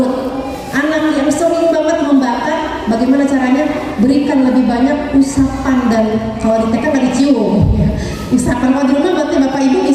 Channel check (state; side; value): identical; both; correlation 1.00